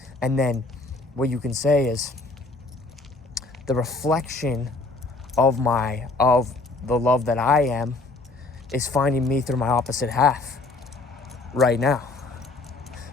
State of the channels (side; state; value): right; quieter; 3.3 dB